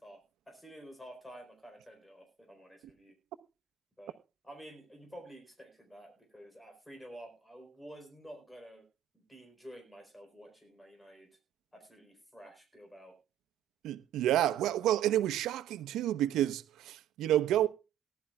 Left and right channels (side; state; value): left; quieter; 11.5 dB